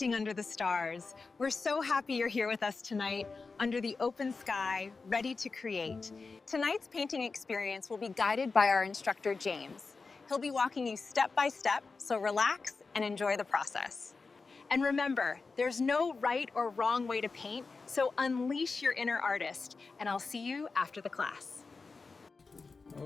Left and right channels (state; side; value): quieter; right; 4.3 dB